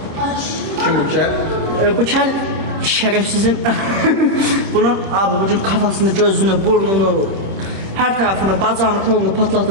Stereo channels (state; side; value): late; left; 26 ms